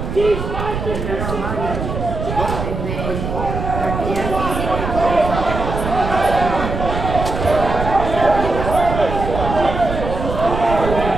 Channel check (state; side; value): noise; right; rumble, 5 dB below the sound